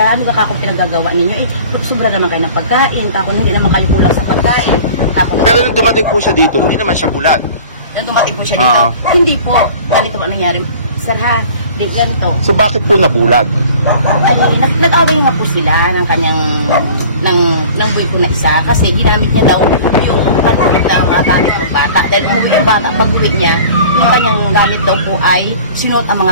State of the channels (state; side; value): inverted; both; correlation -0.44